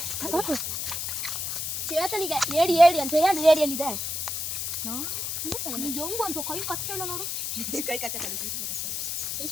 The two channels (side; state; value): left; noise; hiss, 2 dB below the sound